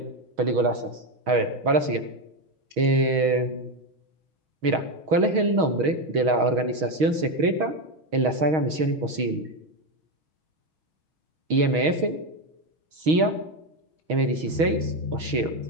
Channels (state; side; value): late; left; 6.3 ms